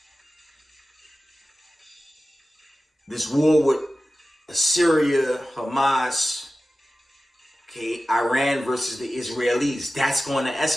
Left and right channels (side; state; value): both; normal; correlation 0.95